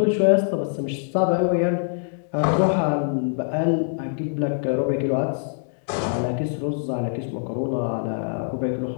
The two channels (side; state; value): right; silent; digital silence